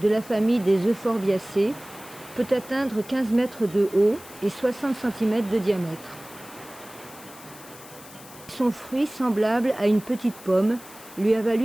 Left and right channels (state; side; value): noise; left; hiss, 19 dB below the sound